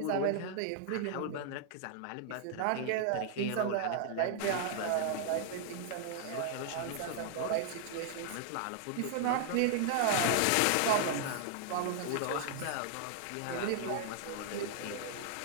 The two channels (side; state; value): both; different; correlation -0.01